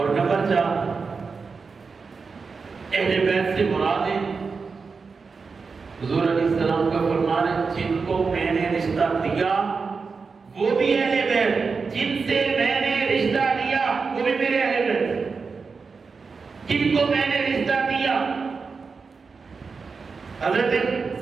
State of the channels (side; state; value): left; quieter; 4.9 dB